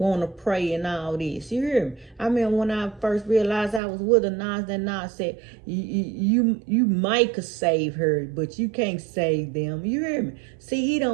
to pray and all this, you hear me? I mean, when I first realized I was with a Nas said, you might could save her, but you can't save them, you hear me? See, he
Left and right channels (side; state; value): left; drops out; at 3.8 s